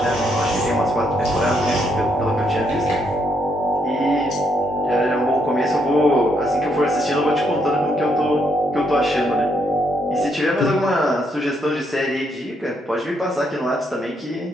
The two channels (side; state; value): both; normal; correlation 0.75